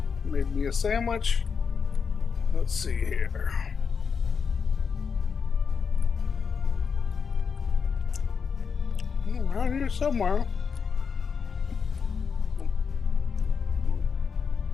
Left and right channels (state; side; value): quieter; right; 5.9 dB